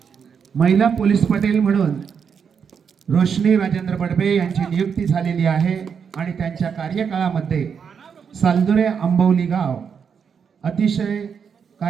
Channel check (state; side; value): quieter; left; 6.7 dB